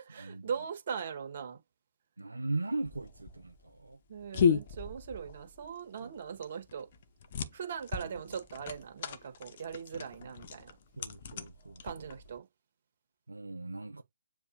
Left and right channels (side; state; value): both; inverted; correlation -0.69